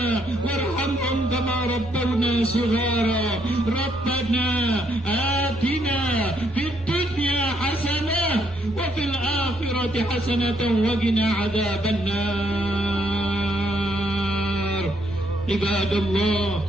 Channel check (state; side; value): normal; both; correlation 0.73